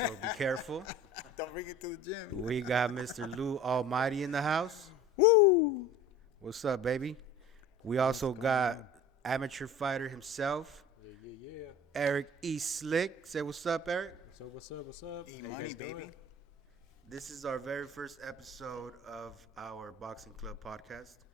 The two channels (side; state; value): both; normal; correlation 0.41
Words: be careful. Don't bring it to the gym. We got Mr. Lou Almighty in the house. Woo! What's up, baby? We also got amateur fighter himself, Yeah. Eric E. Slick. Say what's up, Eric. What's up? E How you money, guys baby. doing? This is our very first episode of our Boxing Club podcast.